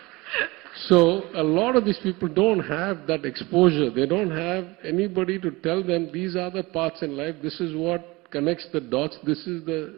So a lot of these people don't have that exposure. They don't have anybody to tell them these are the paths in life. This is what connects the dots. This is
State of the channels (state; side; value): quieter; left; 22.6 dB